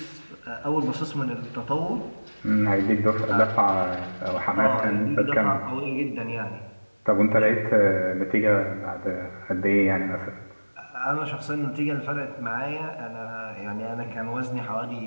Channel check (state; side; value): inverted; both; correlation -1.00